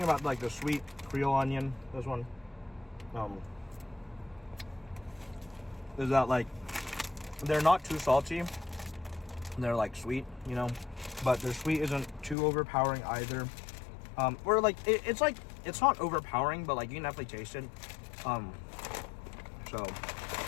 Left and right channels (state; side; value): drops out; right; at 12.4 s